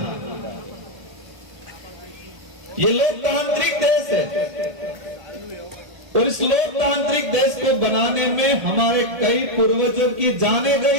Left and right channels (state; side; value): late; left; 1.4 ms